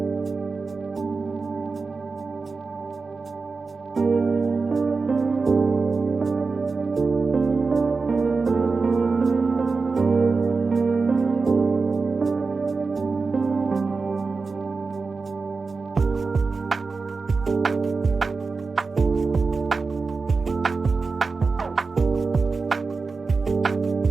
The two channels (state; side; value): quieter; left; 4.3 dB